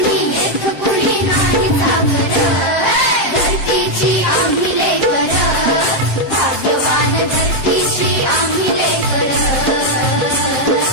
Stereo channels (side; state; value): right; late; 7.6 ms